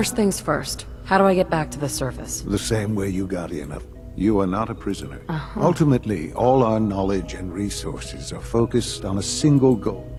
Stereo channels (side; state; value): both; identical; correlation 1.00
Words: things first. How do I get back to the surface? The same way you got in. You are not a prisoner. Ultimately, all our knowledge and resources are focused on a single goal.